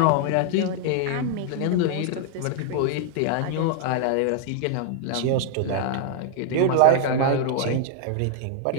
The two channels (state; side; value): different; both; correlation 0.00